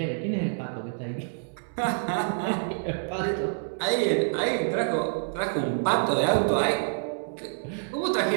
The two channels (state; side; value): silent; left; digital silence